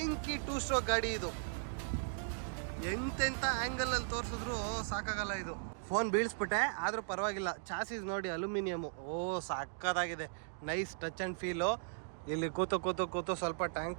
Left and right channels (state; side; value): silent; left; digital silence